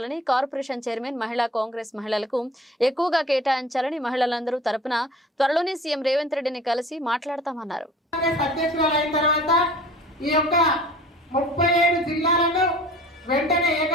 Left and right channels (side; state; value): both; normal; correlation 0.45